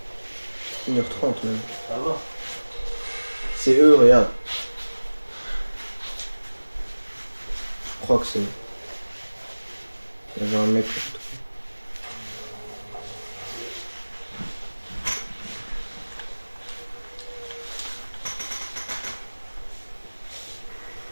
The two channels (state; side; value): inverted; both; correlation -1.00